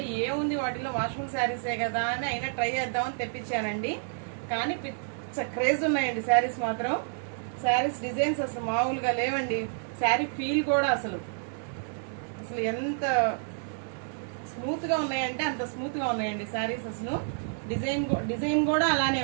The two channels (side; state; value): left; silent; digital silence